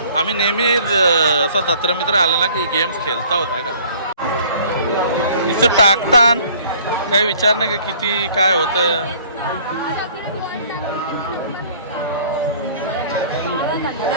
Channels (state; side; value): inverted; both; correlation -0.54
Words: आम्ही नेहमी असा जत्र मित्र आला ना की गेम्स खेळता होता का. इथं टाकतान काही विचार नाही का किती काय होतं.